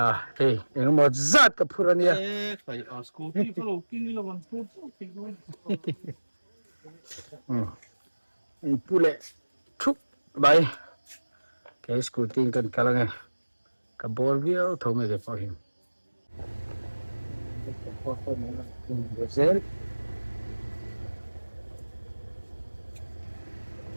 hey yang mau zat ke purania phải ở scooty có lô kinh là bằng scooty pule thúc bay cái scooty kan kalang ka bol view thâu mày cái phim Brazil.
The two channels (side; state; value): both; inverted; correlation -1.00